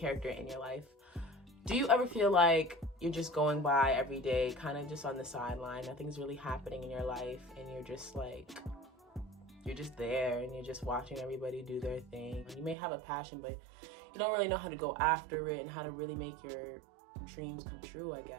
in your life. Do you ever feel like you're just going by every day, kind of just on the sideline, nothing's really happening in your life, and you're just there and you're just watching everybody do their thing? You may have a passion, but you don't really know how to go after it and how to really make your dreams come true, I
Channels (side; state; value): left; drops out; at 12.8 s